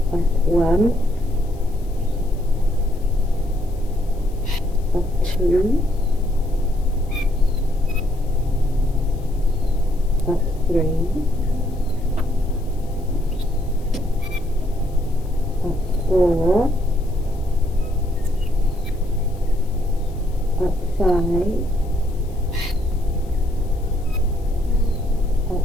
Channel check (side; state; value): left; noise; hiss, 28 dB below the sound